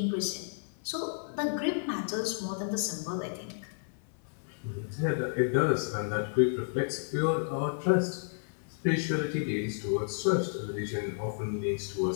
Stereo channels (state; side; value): silent; right; 57 dB below the other